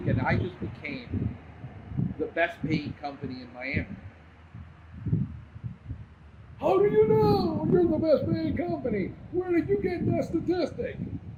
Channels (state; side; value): identical; both; correlation 1.00